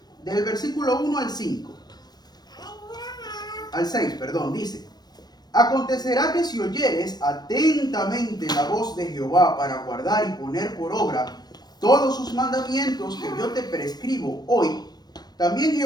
Del versículo 1 al 5. Al 6, perdón, dice: Acontecerá que si oyeres atentamente la voz de Jehová para guardar y poner por obra todos sus mandamientos que yo te prescribo hoy, también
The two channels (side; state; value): right; late; 0.19 ms